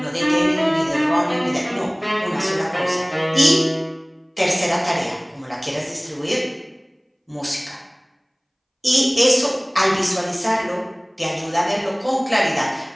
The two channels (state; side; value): identical; both; correlation 1.00